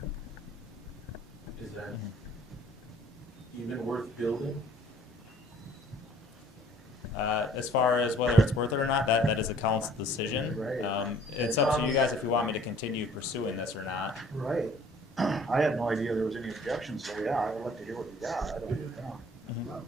Is that even worth building? As far as whether it's worth it or not, that is a council decision. Right. It's up to you guys if you want me to continue pursuing this or not. Right. I had no idea there was any objections, so yeah, I would like to hear what you got. I don't,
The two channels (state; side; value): normal; both; correlation 0.54